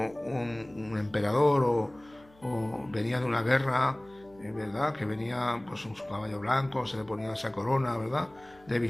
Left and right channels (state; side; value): noise; left; hum, 28 dB below the sound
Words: emperador o venía de una guerra, ¿verdad? Que venía pues en su caballo blanco, se le ponía esa corona, ¿verdad? De